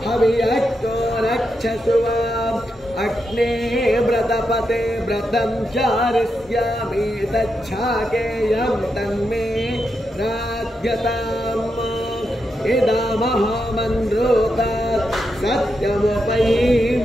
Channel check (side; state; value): both; normal; correlation 0.85